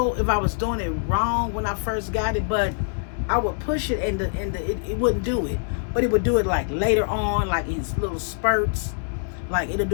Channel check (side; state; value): right; silent; 62 dB below the other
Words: if I was doing it wrong when I first got it, but I would push it and it wouldn't do it, but it would do it like later on, like in little spurts. Like it'll